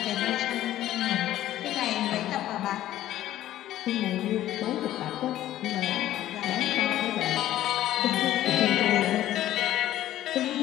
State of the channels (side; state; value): right; quieter; 13.4 dB